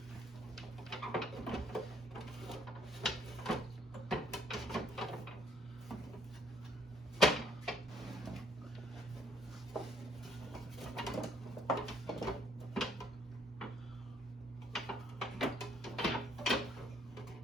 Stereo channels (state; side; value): normal; both; correlation 0.65